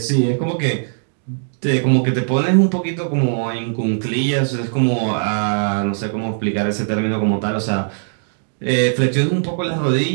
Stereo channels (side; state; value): left; silent; digital silence